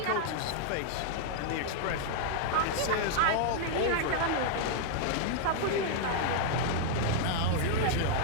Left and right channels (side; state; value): both; different; correlation -0.01